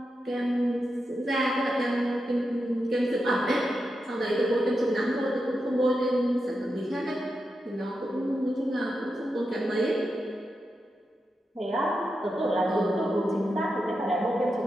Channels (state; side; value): normal; both; correlation 0.88